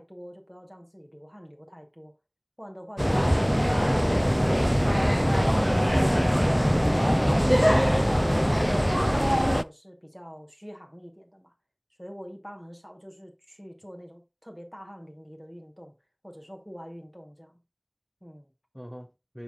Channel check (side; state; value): both; identical; correlation 1.00